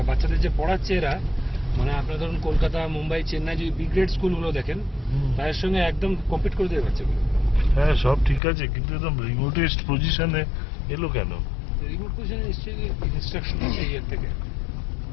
বাচ্চাদের যে পড়াচ্ছে এরা, মানে আপনারা ধরুন কলকাতা, মুম্বাই, চেন্নাই যে বি গ্রেড স্কুলগুলো দেখেন তাদের সঙ্গে একদম কম্পিট করে দেবে বাচ্চাগুলো। হ্যাঁ সব ঠিক আছে, কিন্তু একদম রিমোটেস্ট পজিশনে এলো কেন? রিমোট পজিশনে নিশ্চয়ই ইনস্ট্রাকশন আছে ইয়ের থেকে,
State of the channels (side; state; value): right; drops out; at 8.4 s